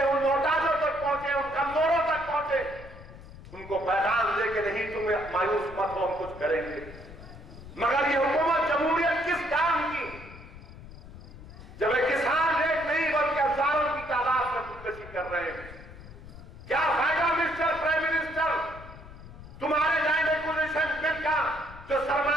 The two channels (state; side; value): noise; left; rumble, 16 dB below the sound